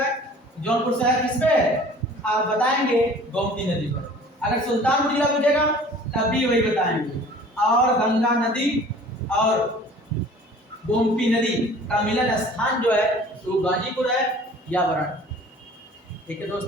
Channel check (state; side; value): normal; both; correlation 0.48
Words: है? जौनपुर शहर किस पे है? आप बताएंगे गोमती नदी पर। अगर सुल्तानपुर जिला पूछेगा तब भी वही बताएंगे। और गंगा नदी और गोमती नदी का मिलन स्थान जो है वो गाजीपुर है या वाराणसी। ठीक है